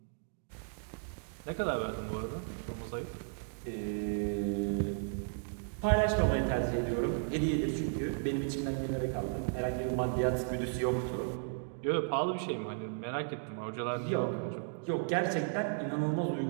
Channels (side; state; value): left; silent; digital silence